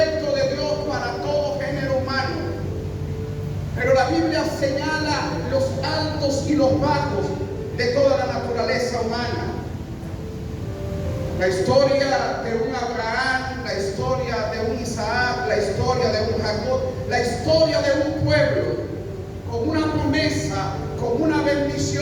de Dios para todo género humano. Pero la Biblia señala los altos y los bajos de toda la naturaleza humana. La historia de un Abraham, la historia de un Isaac, la historia de un Jacob, la historia de un pueblo con una promesa, con una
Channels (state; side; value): identical; both; correlation 1.00